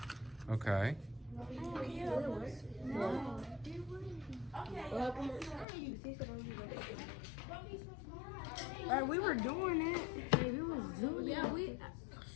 Okay. Alright, we were doing it. Hey, we was doing it. Yeah, we.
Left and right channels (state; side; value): drops out; right; at 5.7 s